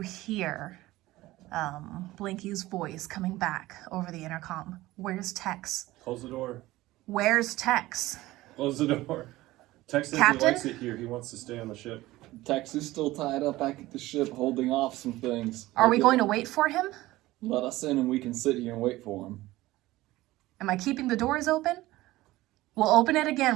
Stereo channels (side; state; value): left; quieter; 17.7 dB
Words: hear Blinky's voice coming back over the intercom. Where's Tex? Close the door. Where's Tex? Close the door. Tex says Captain? he likes it here. He wants to stay on the ship. Tex is still tied up back at the ship, holding off some things. Are we going to wait for him? Let us in and we can sit here and wait for him. Am I keeping the doors open? We'll open it